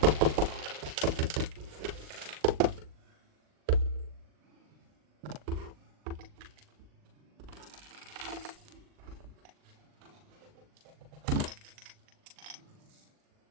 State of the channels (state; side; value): late; left; 39 ms